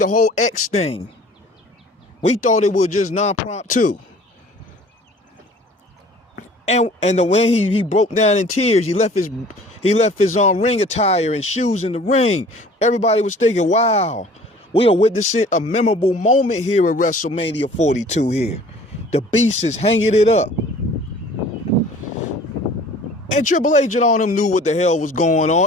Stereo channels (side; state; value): both; normal; correlation 0.49